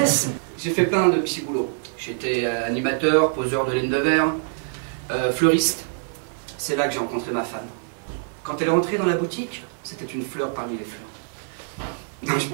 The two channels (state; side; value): silent; left; 62 dB below the other